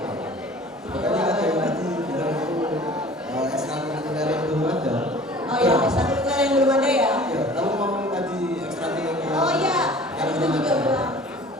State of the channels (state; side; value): normal; both; correlation 0.46